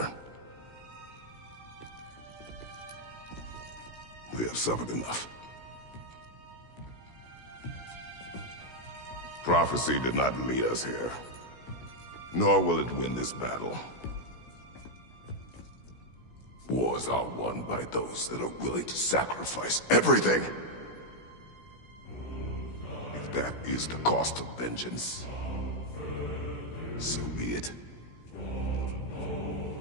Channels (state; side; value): late; right; 16 ms